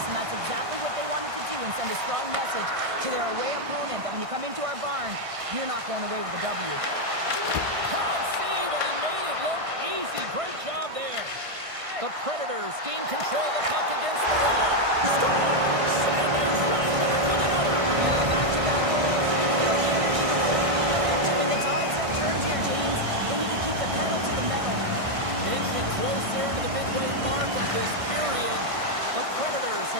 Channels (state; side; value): late; left; 1.6 ms